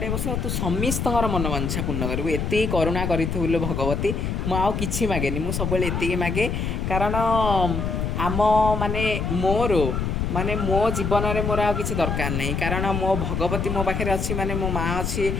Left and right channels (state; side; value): noise; left; rumble, 1 dB below the sound